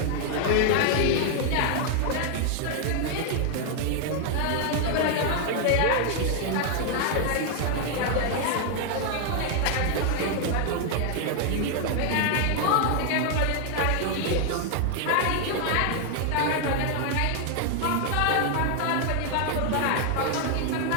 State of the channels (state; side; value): different; both; correlation 0.00